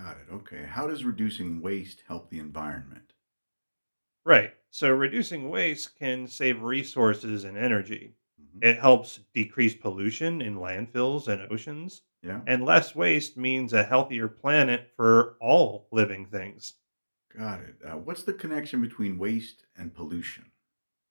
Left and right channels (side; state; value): both; inverted; correlation -1.00